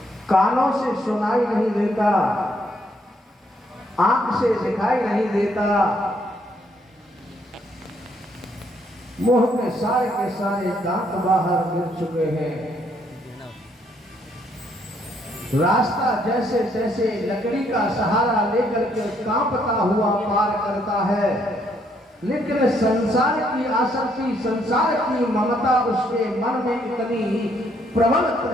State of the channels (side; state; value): both; normal; correlation 0.70